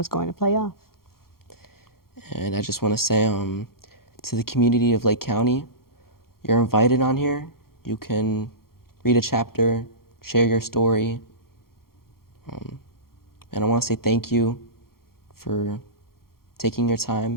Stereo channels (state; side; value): late; right; 0.93 ms